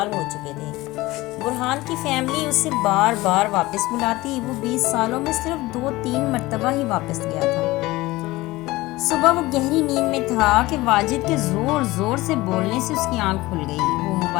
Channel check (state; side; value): quieter; right; 19.5 dB